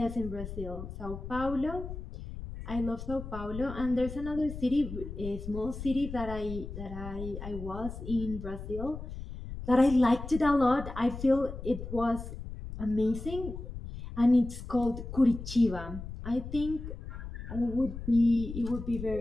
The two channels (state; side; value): noise; left; rumble, 9 dB below the sound